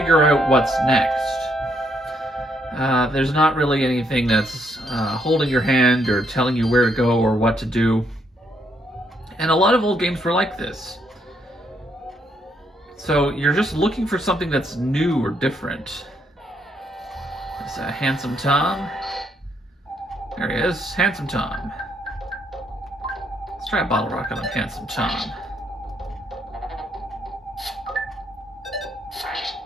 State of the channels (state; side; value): normal; both; correlation 0.73